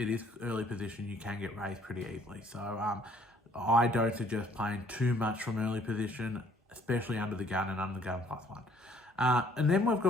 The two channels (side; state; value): both; normal; correlation 0.61